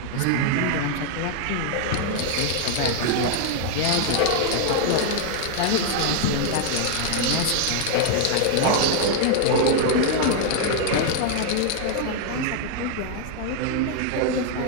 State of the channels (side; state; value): both; different; correlation 0.00